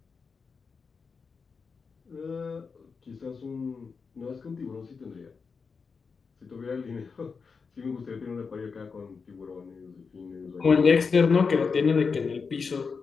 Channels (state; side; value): quieter; right; 5.2 dB